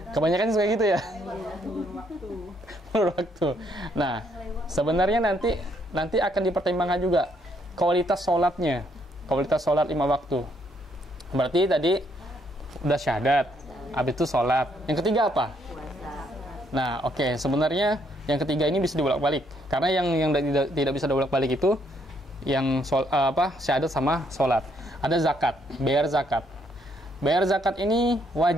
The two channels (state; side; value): normal; both; correlation 0.71